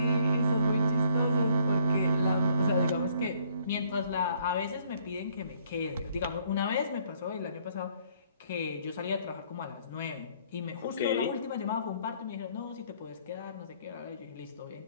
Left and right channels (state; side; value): inverted; both; correlation -0.64